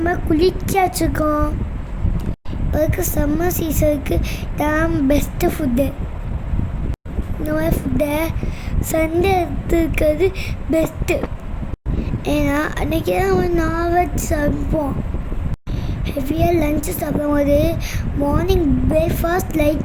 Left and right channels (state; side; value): identical; both; correlation 1.00